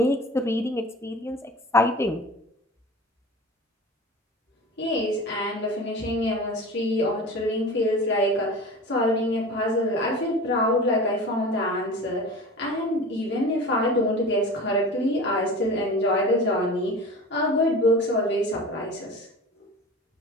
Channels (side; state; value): both; normal; correlation 0.35